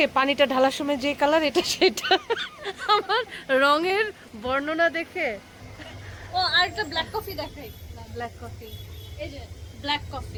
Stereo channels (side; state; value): both; identical; correlation 1.00